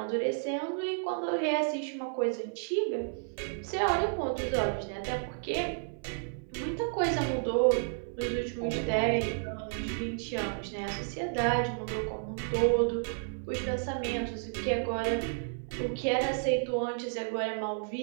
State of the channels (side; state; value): left; silent; 57 dB below the other